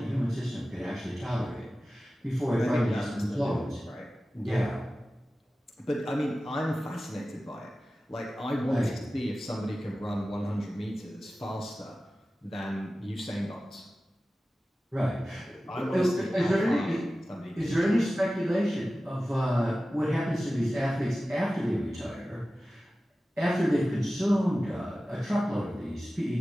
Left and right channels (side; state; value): both; normal; correlation 0.95